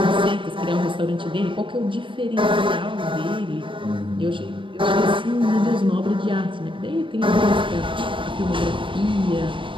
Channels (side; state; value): left; late; 0.25 ms